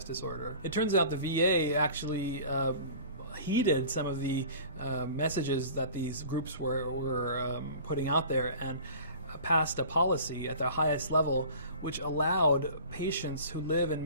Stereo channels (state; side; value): inverted; both; correlation -0.42